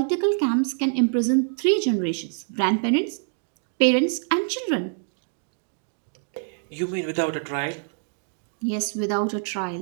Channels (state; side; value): silent; left; digital silence